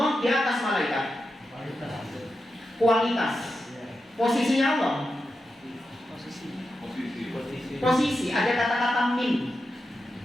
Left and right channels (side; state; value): both; normal; correlation 0.89